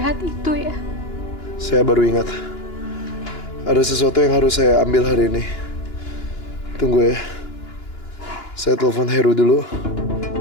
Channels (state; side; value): late; right; 2.9 ms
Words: itu ya? Saya baru ingat. Ada sesuatu yang harus saya ambil hari ini. Tunggu ya. Saya telepon Heru dulu.